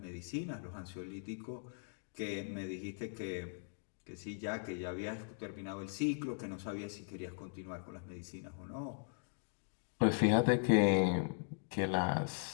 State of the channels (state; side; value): silent; right; digital silence